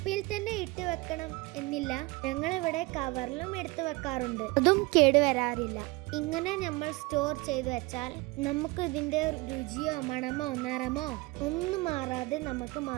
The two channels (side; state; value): left; quieter; 23.4 dB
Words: തന്നെ ഇട്ട് വെക്കണം എന്നില്ല, ഞങ്ങളിവിടെ കവറിലും എടുത്തു വെക്കാറുണ്ട്. അതും കേടുവരാറില്ല. ഇങ്ങനെ നമ്മൾ സ്റ്റോർ ചെയ്ത് വെച്ചാൽ നമുക്ക് ഇതിന്റെ രുചിയോ മണമോ നിറമോ ഒന്നും മാറാതെ നമുക്ക്